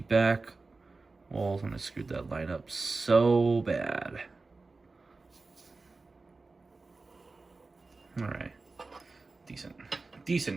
walls, and I screwed that line up so bad. All right,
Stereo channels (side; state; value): left; quieter; 3.7 dB